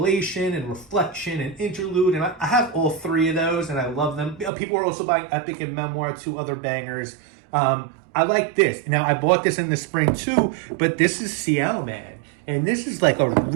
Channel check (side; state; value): left; drops out; at 4.5 s